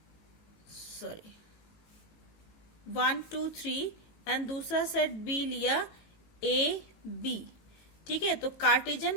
3 एंड दूसरा सेट बी लिया ए बी। ठीक है, तो Cartesian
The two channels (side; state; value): right; late; 18 ms